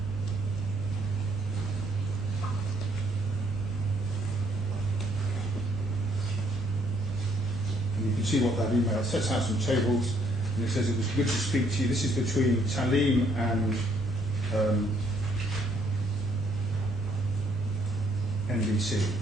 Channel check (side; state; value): both; normal; correlation 0.68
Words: And you can see what that email sets out some tables. And it says it was good to speak to you. This is between Taaleem and NBC.